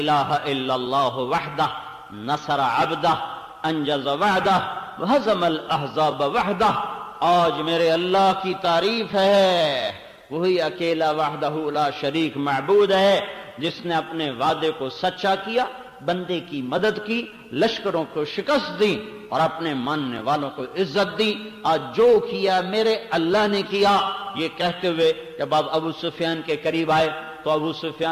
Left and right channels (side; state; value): both; identical; correlation 1.00